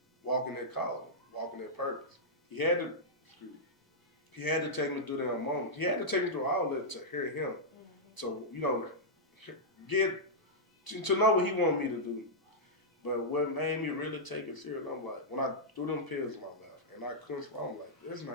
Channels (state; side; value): normal; both; correlation -0.10